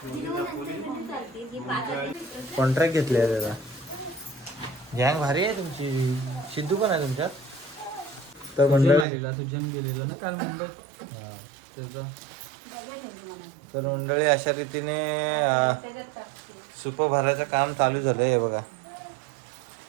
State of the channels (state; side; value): drops out; left; at 9.1 s